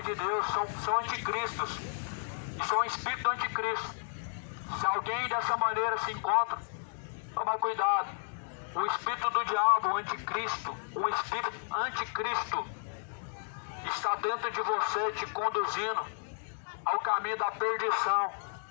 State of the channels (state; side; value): silent; right; digital silence